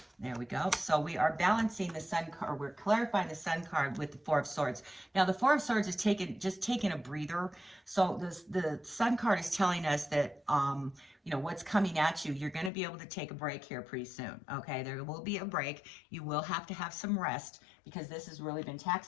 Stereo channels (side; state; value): right; drops out; at 12.7 s